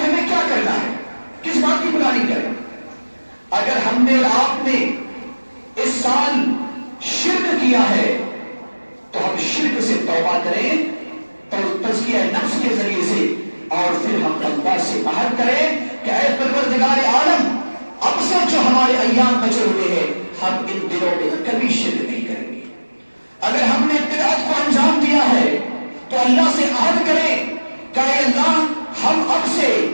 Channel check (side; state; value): both; inverted; correlation -1.00